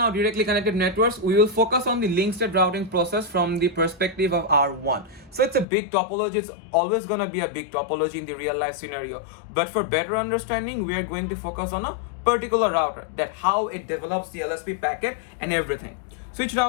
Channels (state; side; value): drops out; right; at 5.7 s